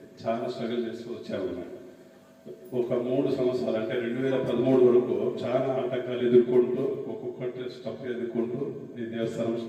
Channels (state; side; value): identical; both; correlation 1.00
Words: చాలా స్ట్రగుల్ చేస్తూ వచ్చాము. ఒక 3 సంవత్సరాలు అంటే 2013 వరకు చాలా ఆటంకాలు ఎదుర్కొంటూ, ఒక్కొక్కటి స్టెప్ ఎదుర్కొంటూ ఈ దేవస్థానం